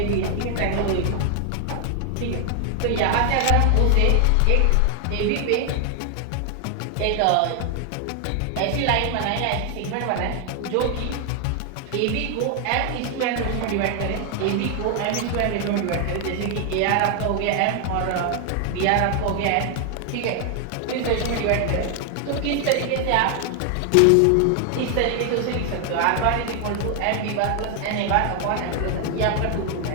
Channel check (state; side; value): different; both; correlation 0.00